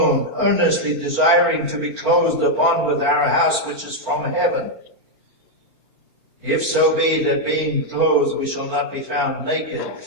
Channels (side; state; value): left; late; 4.4 ms